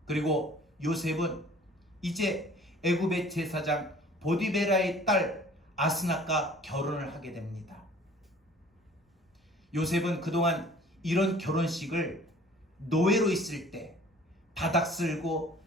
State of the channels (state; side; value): normal; both; correlation 0.51